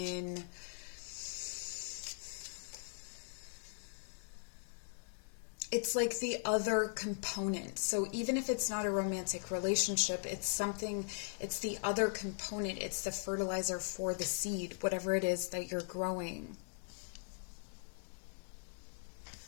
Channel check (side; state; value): right; silent; digital silence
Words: it's like the other component. So even if it's not a romantic relationship, it's the other component. It's the fertilizer for the seed, whatever it is that you're growing.